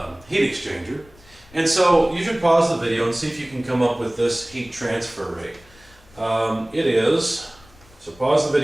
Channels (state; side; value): noise; left; rumble, 26 dB below the sound